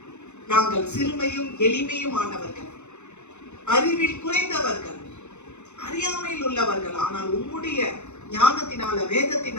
நாங்கள் சிறுமையும் எளிமையும் ஆனவர்கள், அறிவில் குறைந்தவர்கள், அறியாமையில் உள்ளவர்கள், ஆனால் உம்முடைய ஞானத்தினால,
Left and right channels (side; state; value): right; late; 0.83 ms